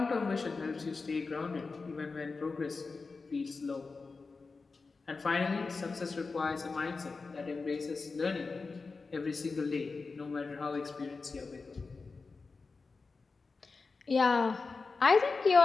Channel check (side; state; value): right; quieter; 4.2 dB